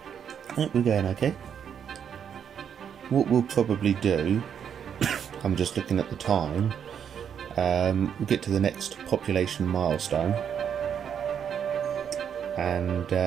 I think we're going okay. What we'll probably do, I'm just looking at the time, we'll get to the next population milestone and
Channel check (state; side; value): quieter; left; 8.2 dB